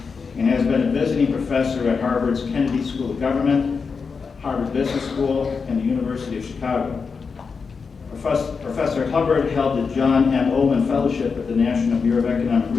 and has been a visiting professor at Harvard's Kennedy School of Government, Harvard Business School, and the University of Chicago. Professor Hubbard held the John M. Ullman Fellowship at the National Bureau of Economic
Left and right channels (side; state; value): right; quieter; 5.2 dB